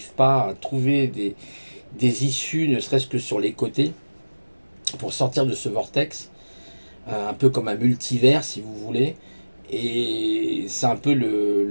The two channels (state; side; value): inverted; both; correlation -1.00